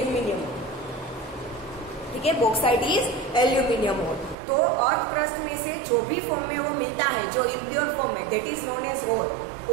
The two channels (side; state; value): left; drops out; at 4.4 s